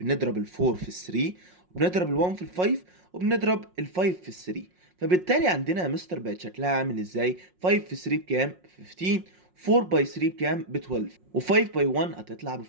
ال 4 في ال 3، وبنضرب ال 1 في ال 5، وبنضرب ال 5 في ال 3. فبالتالي عندنا يا مستر بقت شكلها عامل ازاي؟ 5 في 3 بكام؟ 15. 4 باي 3 بكام؟ ب 12. و5 باي 1 هتطلع ب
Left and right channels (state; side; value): late; left; 5.5 ms